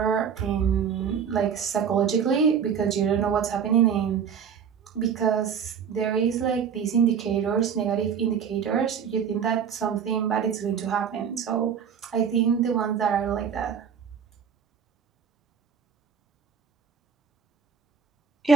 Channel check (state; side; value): quieter; left; 7.2 dB